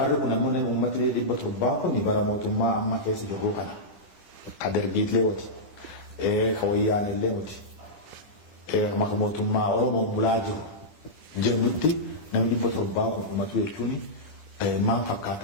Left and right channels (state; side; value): late; right; 10 ms